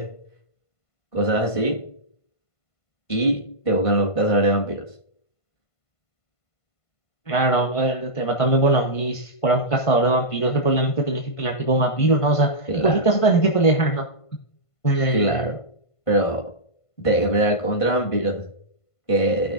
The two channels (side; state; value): right; late; 1.5 ms